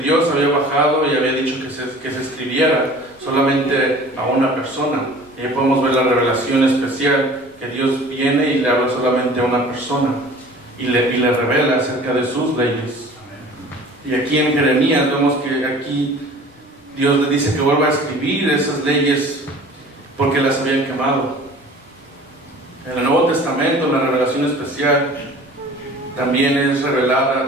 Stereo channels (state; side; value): normal; both; correlation 0.45